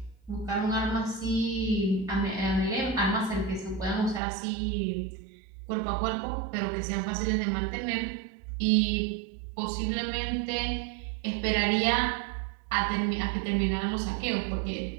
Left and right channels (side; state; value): left; drops out; at 4.2 s